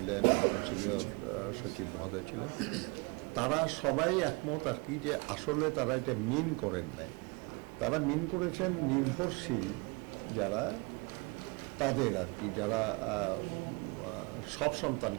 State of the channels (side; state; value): left; quieter; 29.6 dB